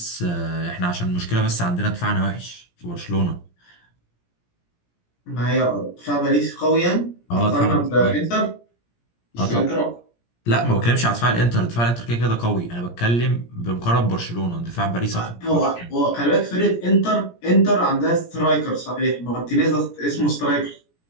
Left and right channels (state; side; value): late; right; 17 ms